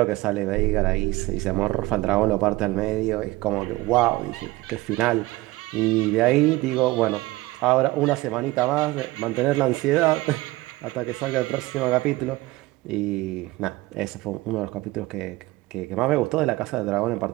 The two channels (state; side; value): quieter; left; 19.8 dB